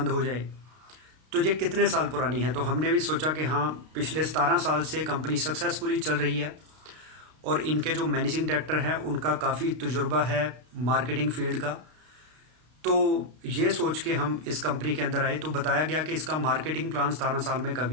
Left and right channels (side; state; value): left; late; 32 ms